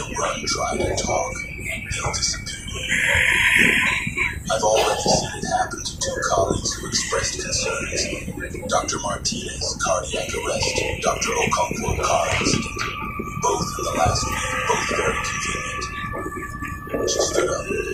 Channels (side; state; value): both; identical; correlation 1.00